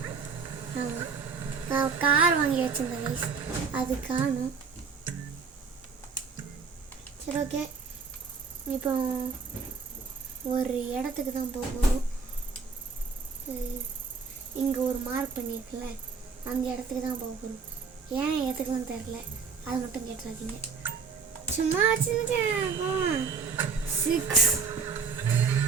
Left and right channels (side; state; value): left; quieter; 5.3 dB